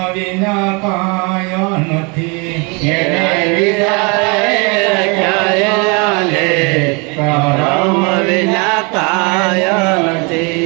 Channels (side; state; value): left; quieter; 31.1 dB